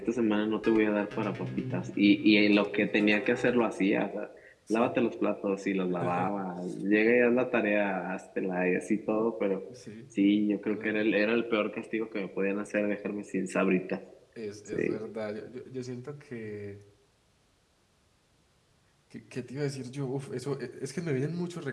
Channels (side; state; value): both; identical; correlation 1.00